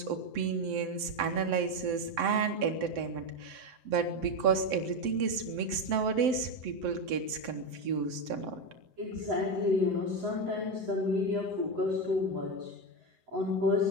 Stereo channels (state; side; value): late; left; 7.7 ms